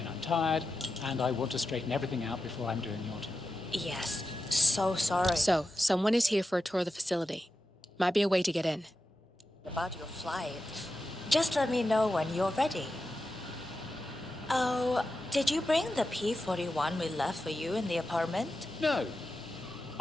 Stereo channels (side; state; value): both; normal; correlation 0.91